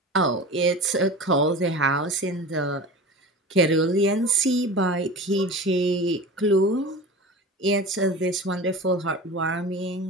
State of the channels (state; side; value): normal; both; correlation 0.34